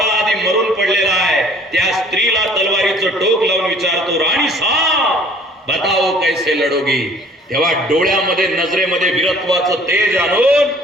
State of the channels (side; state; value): both; normal; correlation 0.54